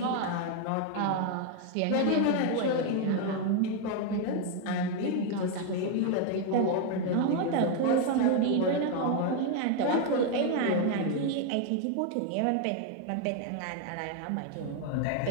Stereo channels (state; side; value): different; both; correlation 0.01